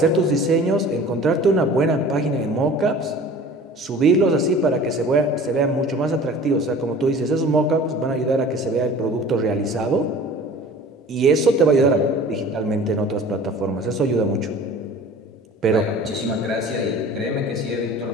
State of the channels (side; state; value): both; normal; correlation 0.44